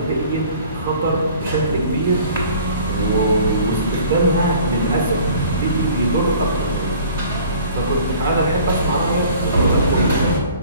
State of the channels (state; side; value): inverted; both; correlation -0.49